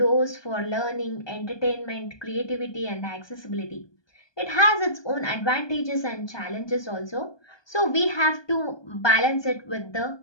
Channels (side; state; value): right; late; 1.2 ms